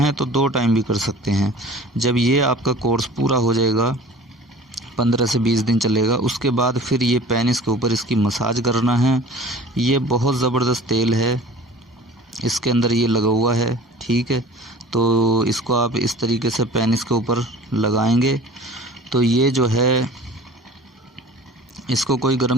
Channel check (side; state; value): both; normal; correlation 0.44